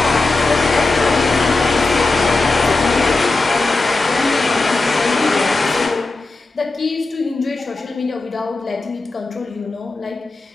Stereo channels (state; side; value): quieter; right; 3.4 dB